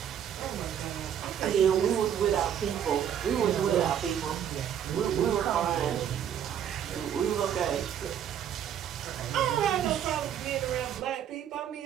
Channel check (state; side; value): quieter; left; 9.4 dB